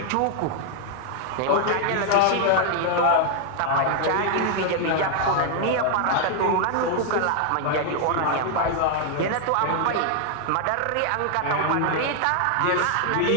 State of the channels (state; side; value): different; both; correlation 0.00